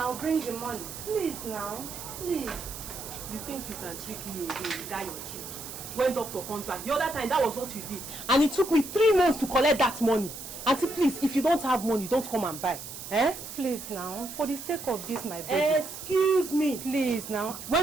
bring the money. Please now. Please. You think you can trick me again, you got your trick. When doctor comes back, the other time that was what you did. And it took me 3 months to collect that money. Auntie, please, if you don't have money, don't come and buy. Eh? Please now, for the sake of this, my baby. Excuse me. Please now.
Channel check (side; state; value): right; noise; hiss, 10 dB below the sound